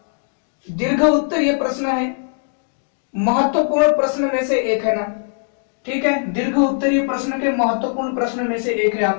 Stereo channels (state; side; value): silent; right; 66 dB below the other